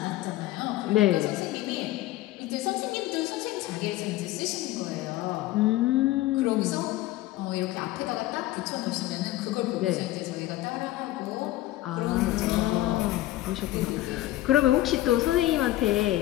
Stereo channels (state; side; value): quieter; right; 15.9 dB